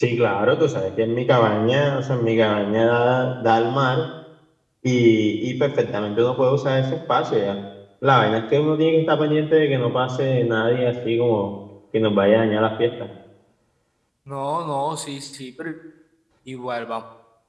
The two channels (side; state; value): both; identical; correlation 1.00